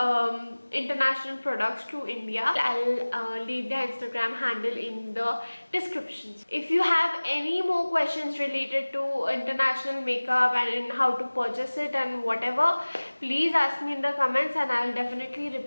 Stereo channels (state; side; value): inverted; both; correlation -1.00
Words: international products to India. I'll leave the Instagram handle in the descriptions. If you have any more questions related to international makeup and in how to purchase it and whatever, please ask me in the comments and I'll definitely